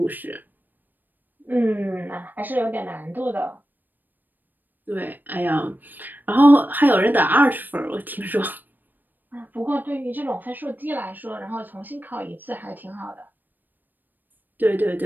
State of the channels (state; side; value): late; left; 0.089 ms